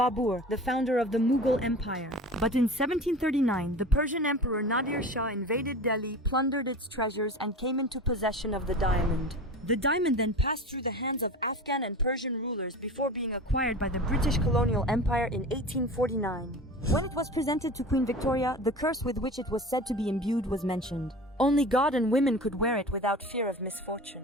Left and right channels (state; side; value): normal; both; correlation 0.35